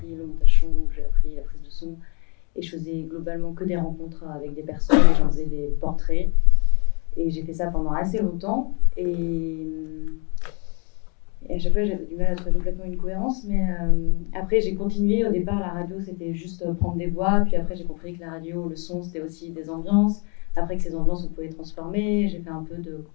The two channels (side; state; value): right; quieter; 35.4 dB